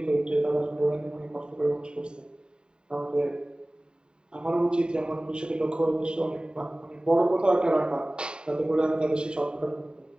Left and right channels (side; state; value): left; late; 0.048 ms